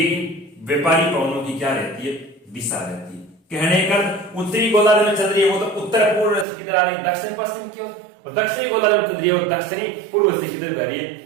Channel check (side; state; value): left; drops out; at 6.5 s